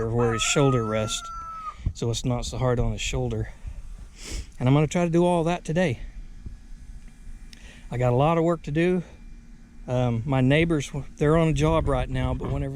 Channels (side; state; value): both; identical; correlation 1.00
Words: where his shoulder rests, so it's not so hard on his shoulder. And I'm going to try to do all that today. I got a lot of work to do. My neighbors, they're on a job right now, but